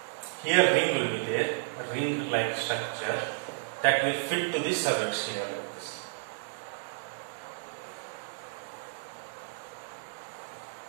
Here ring will be there, ring like structure that will fit to the cervix here like this.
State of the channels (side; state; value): left; silent; 57 dB below the other